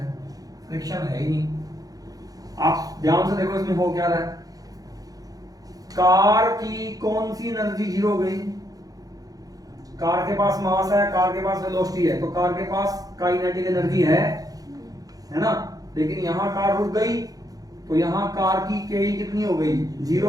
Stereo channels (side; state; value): left; late; 0.18 ms